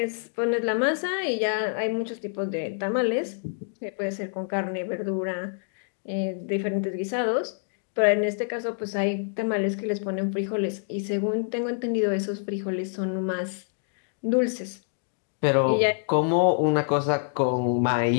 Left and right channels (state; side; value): silent; right; digital silence